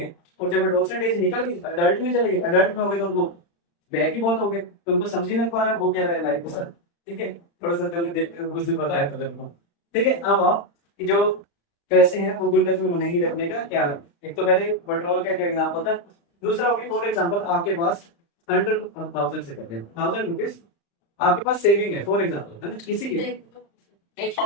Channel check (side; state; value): right; late; 35 ms